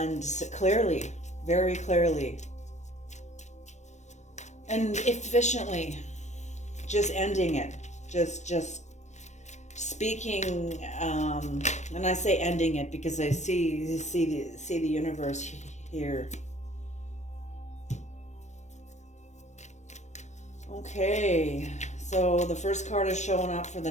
clearly, very clearly, and efficiently, just ending it, just speaking. And I say ending it because I see the universe here. Okay, so the first card is showing up for the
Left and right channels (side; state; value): right; late; 0.34 ms